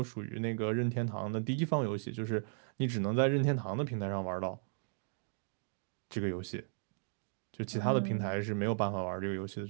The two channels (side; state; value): left; silent; digital silence